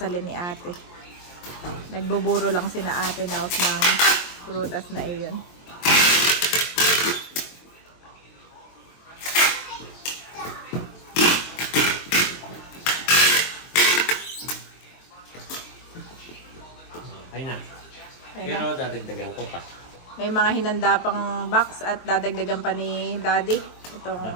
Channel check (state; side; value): late; right; 23 ms